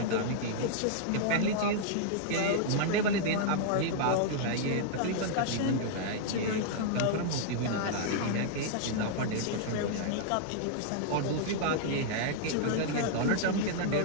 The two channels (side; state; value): both; different; correlation -0.01